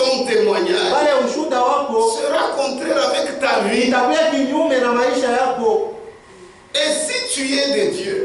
témoignage pale ushuhuda wako sera contraire avec ta vie. itakuwa kinyume na maisha yako, Et si tu es de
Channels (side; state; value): both; identical; correlation 1.00